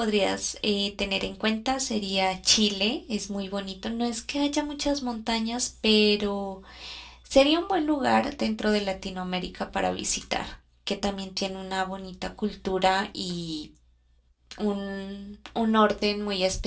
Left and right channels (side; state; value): both; identical; correlation 1.00